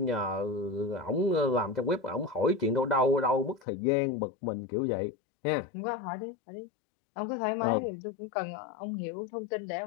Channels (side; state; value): right; drops out; at 3.7 s